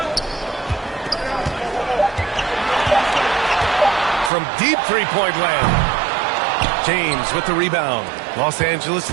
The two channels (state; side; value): drops out; left; at 4.3 s